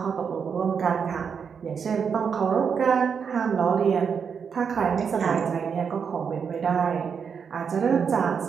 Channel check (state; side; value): quieter; left; 6.5 dB